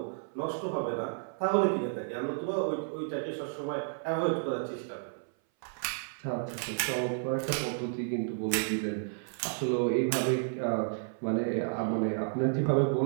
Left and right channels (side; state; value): left; silent; 57 dB below the other